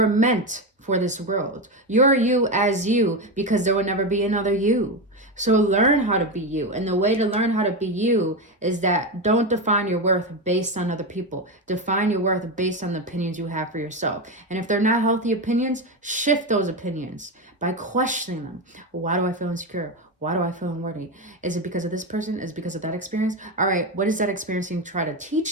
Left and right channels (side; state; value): both; normal; correlation 0.14